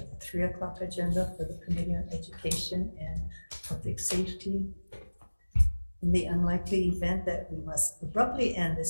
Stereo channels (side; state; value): both; inverted; correlation -1.00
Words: the 3 o'clock agenda for the Committee on Education and Public Safety. In the unlikely event that we must abruptly end